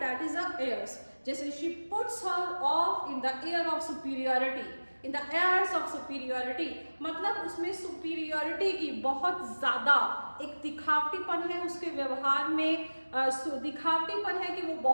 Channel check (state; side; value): inverted; both; correlation -1.00